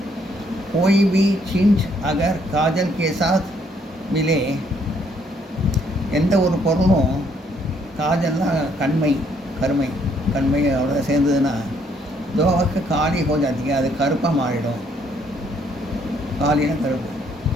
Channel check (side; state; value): both; normal; correlation 0.68